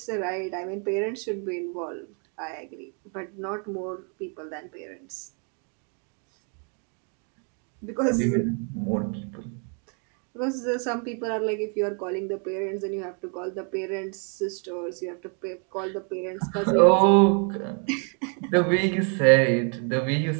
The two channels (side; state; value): left; quieter; 39.9 dB